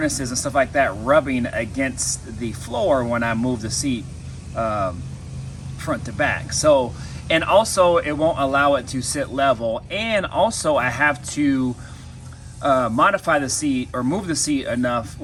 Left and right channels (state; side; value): identical; both; correlation 1.00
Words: and stuff like that rubbing against the floor when I move the seat front to back. So, and also it won't allow it to sit level, and also I have to modify the seat or move the seat enough